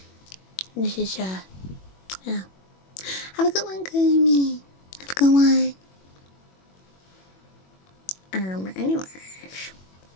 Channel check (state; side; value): late; right; 21 ms